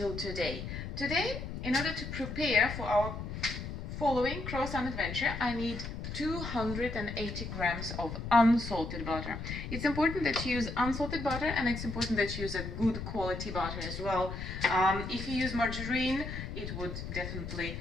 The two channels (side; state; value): left; noise; rumble, 7 dB below the sound